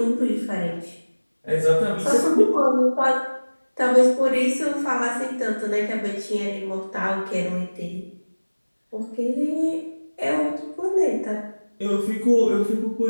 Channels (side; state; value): both; inverted; correlation -1.00